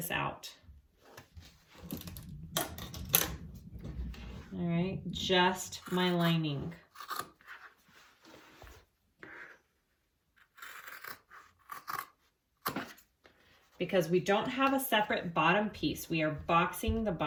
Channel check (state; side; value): identical; both; correlation 1.00